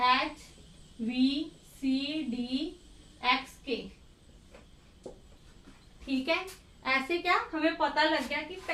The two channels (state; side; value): identical; both; correlation 1.00